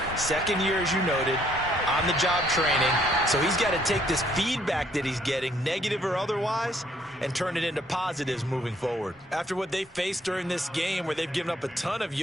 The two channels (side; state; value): both; normal; correlation 0.66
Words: second year, as you noted, on-the-job training. So he's got to take this feedback that he's getting, negative or otherwise, and turn it into positives moving forward. After what they faced during this game where they've given up a ton of